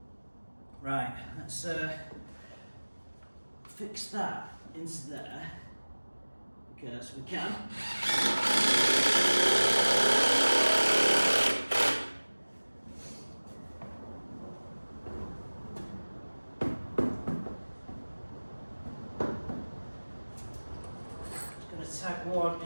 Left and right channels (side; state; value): both; inverted; correlation -1.00